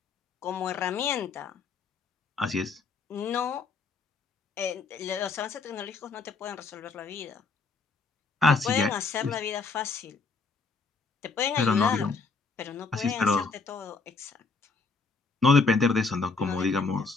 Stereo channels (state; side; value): quieter; right; 4.4 dB